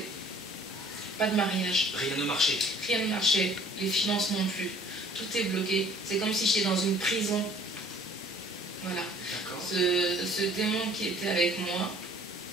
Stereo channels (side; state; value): both; normal; correlation 0.54